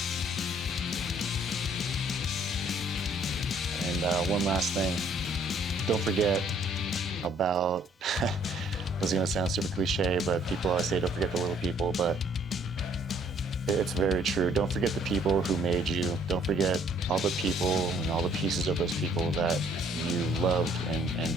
And one last thing. Don't forget about, this is going to sound super cliche, but people always say don't forget the little people, but it's very true. Don't forget the people who made you. Don't forget all the people and all the pieces of those people that you loved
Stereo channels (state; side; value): normal; both; correlation 0.62